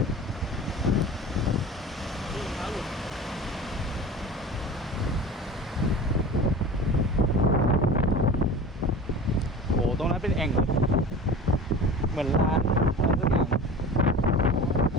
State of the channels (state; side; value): normal; both; correlation 0.37